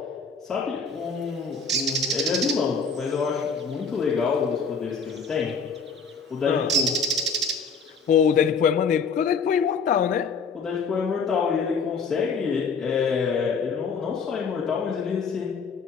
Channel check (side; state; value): right; quieter; 4.9 dB